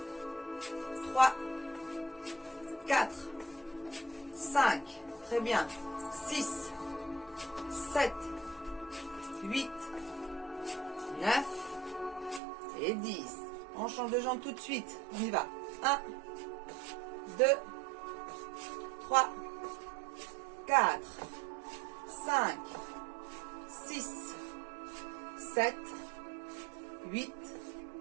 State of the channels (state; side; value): drops out; left; at 12.4 s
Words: 3, 4, 5, très bien. 6, 7, 8, 9 et 10. On change de jambe tout de suite. On y va. 1, 2, 3, 4, 5, 6, 7, 8,